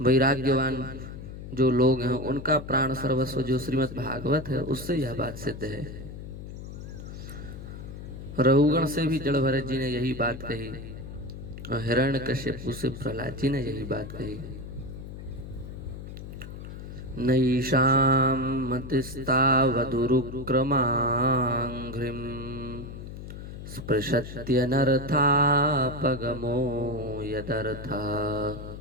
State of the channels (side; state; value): left; noise; hum, 11 dB below the sound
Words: वैराग्यवान जो लोग हैं उनका प्राण सर्वस्व जो श्रीमद् भागवत है, उससे यह बात सिद्ध है। रघुगण से भी जड़ भरत जी ने यही बात कही और हिरण्यकश्यप से प्रहलाद जी ने यही बात कही। नैषां मतिस्तावदुरुक्रमाङ्घ्रिं स्पृशत्यनर्थापगमो यदर्था